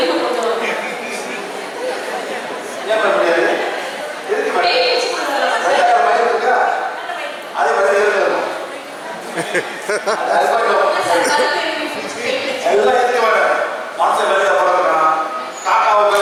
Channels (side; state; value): both; identical; correlation 1.00